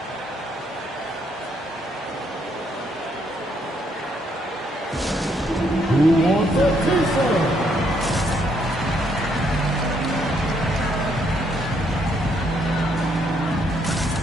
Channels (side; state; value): both; normal; correlation 0.72